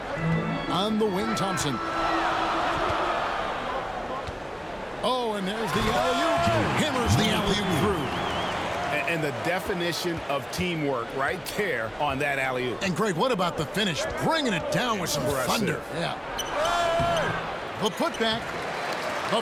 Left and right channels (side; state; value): both; identical; correlation 1.00